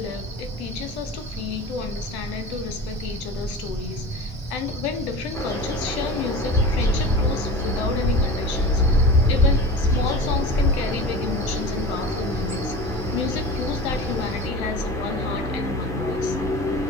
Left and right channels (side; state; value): both; normal; correlation 0.34